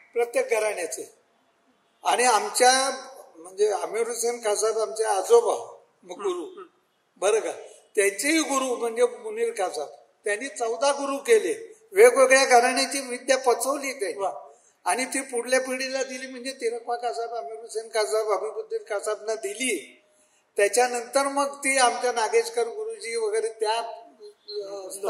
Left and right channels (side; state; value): both; identical; correlation 1.00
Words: प्रत्येक घराण्याचे. आणि आमच्या म्हणजे आमिर हुसेन खासाब आमचे आजोबा गुरु बरं का, त्यांचेही गुरु म्हणजे मुनीर खासाब, त्यांनी 14 गुरु केले. वेगवेगळ्या घराण्याची विद्या पचवली त्यांनी आणि ती पुढल्या पिढीला दिली. म्हणजे तिरकवा खासाब, आमिर हुसेन खासाब, हबीबुद्दीन खासाबना दिली. त्याच्यानंतर मग ती आमच्या नागेशकर गुरुजी वगैरे त्या